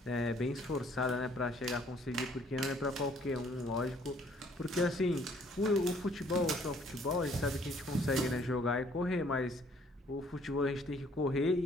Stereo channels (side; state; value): both; normal; correlation 0.61